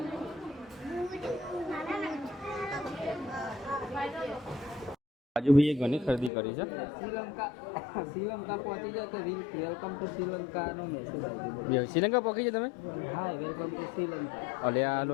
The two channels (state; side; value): drops out; right; at 6.3 s